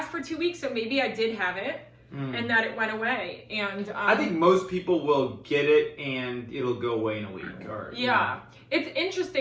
for 2 weeks, so maybe I did have it, and that it went away. And I think most people will get it, and it'll go away in a week. Or, yeah. You know. It's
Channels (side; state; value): both; identical; correlation 1.00